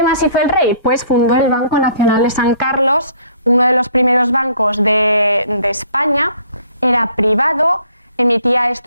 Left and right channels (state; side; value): inverted; both; correlation -0.59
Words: más hizo el rey? Pues fundó el Banco Nacional de San Carlos, uno de los primeros bancos de España. Era privado, emitía